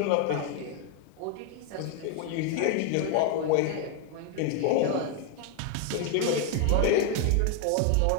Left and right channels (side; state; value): both; different; correlation 0.01